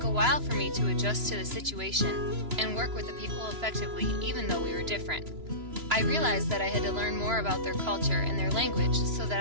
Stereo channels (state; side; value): late; left; 3.0 ms